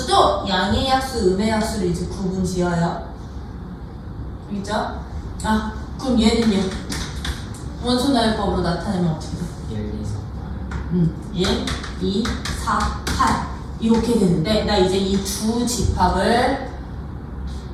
양의 약수, 음의 약수를 이제 구분 지어요. 그죠? 아, 그럼 얘는 얘 원소나열법으로 나타내면 어떻게 돼? 1, 2, 4, 8 이렇게 되는데 나 이제 이 두 집합을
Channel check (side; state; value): both; identical; correlation 1.00